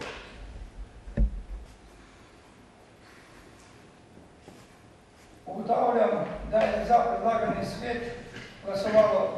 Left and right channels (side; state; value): both; identical; correlation 1.00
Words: Ugotavljam, da je za predlagani svet